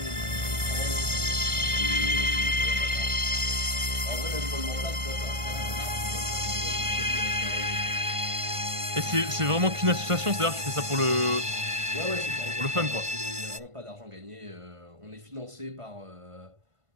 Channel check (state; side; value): late; left; 1.5 ms